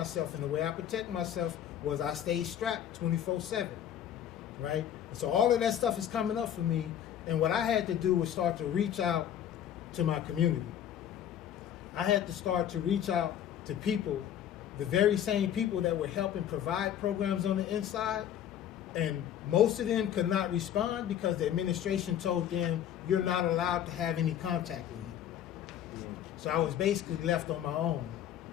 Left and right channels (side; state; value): right; quieter; 10.2 dB